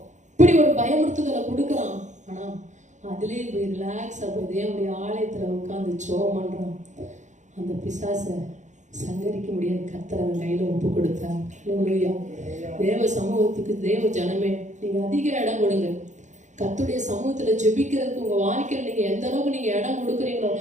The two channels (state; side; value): late; left; 0.35 ms